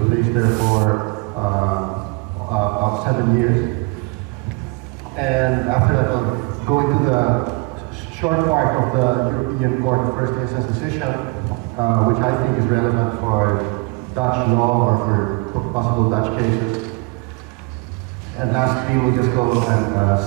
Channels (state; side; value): quieter; left; 28.2 dB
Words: placed there for about 7 years. And after that, I'll go into the short part of the European Court of First Instance decision, which I think is relevant for Dutch law or for possible Dutch cases. And lastly, we'll just go and